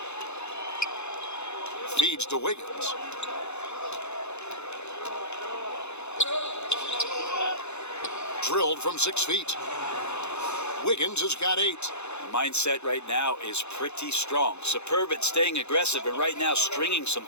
Feeds to Wiggins. Drilled from 6 feet. Wiggins has got 8. The mindset right now is pretty strong. Superb at staying aggressive and right now stringing some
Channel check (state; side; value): late; right; 0.81 ms